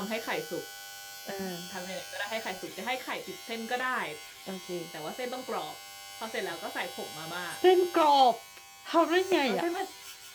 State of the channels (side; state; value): both; identical; correlation 1.00